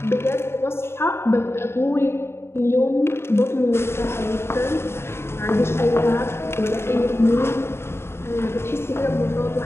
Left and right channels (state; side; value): late; right; 0.12 ms